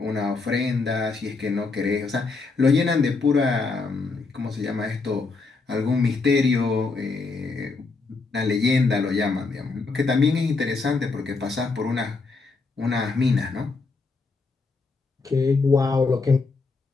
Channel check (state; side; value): quieter; right; 4.1 dB